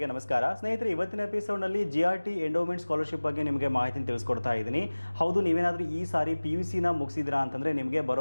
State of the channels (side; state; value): both; inverted; correlation -1.00